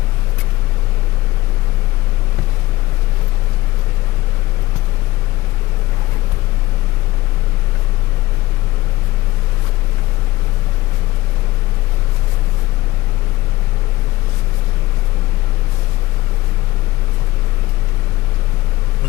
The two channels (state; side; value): quieter; right; 18.1 dB